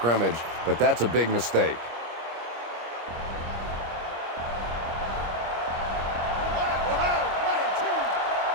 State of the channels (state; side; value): late; left; 25 ms